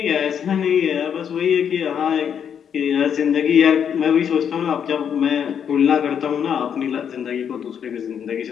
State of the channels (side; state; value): right; quieter; 8.1 dB